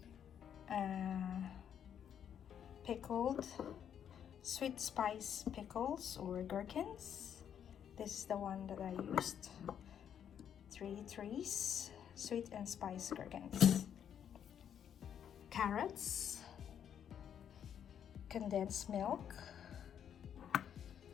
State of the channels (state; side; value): quieter; right; 8.9 dB